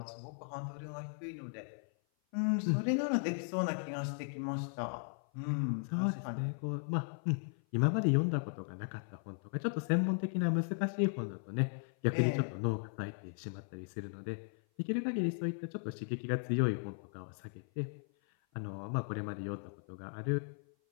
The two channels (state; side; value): silent; right; 53 dB below the other